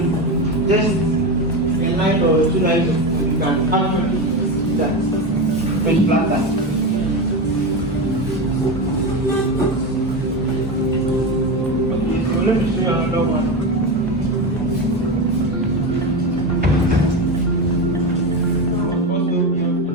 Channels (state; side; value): normal; both; correlation 0.18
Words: just a line or 2 lines of code, you can actually see that with flutter. Okay, so let me show you another one.